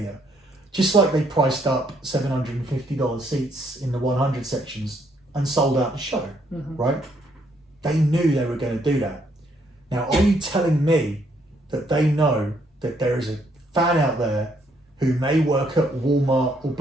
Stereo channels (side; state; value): both; normal; correlation 0.71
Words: just like they priced up $750 seats in the 100 sections and sold out the show, right? They knew they were going to do that. Now, are you telling me that they know that there is a fan out there who may work at Walmart or